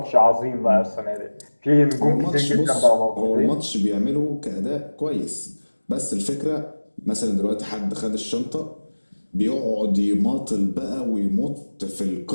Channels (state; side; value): inverted; both; correlation -1.00